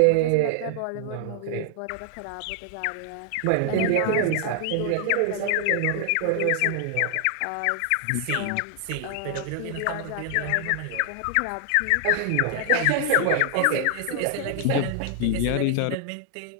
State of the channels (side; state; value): both; different; correlation 0.00